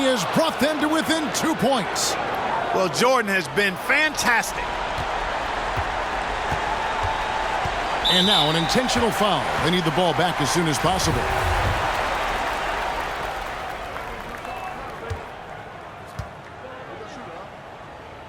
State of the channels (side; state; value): both; identical; correlation 1.00